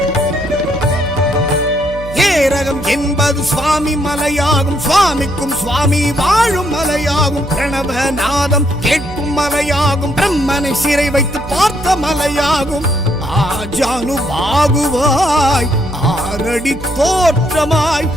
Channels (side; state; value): right; noise; hum, 12 dB below the sound